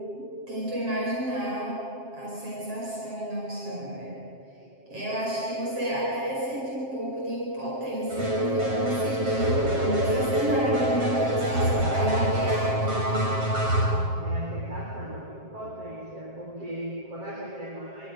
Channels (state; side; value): late; left; 7.5 ms